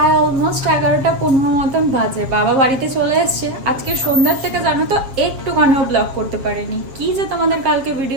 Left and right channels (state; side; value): late; left; 7.5 ms